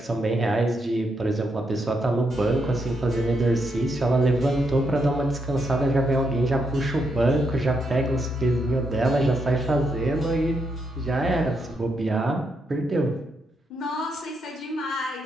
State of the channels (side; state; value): both; normal; correlation 0.79